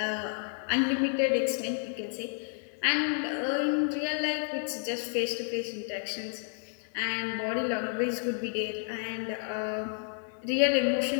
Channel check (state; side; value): silent; right; 57 dB below the other